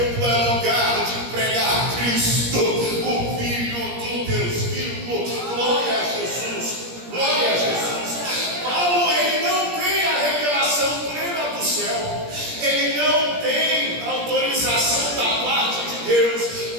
é lugar de pregar Cristo, o Filho do Deus vivo. Glória a Jesus, glória a Jesus. Paulo, ele não tem a revelação plena do céu, ele não tem autorização da parte de Deus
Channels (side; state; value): left; late; 17 ms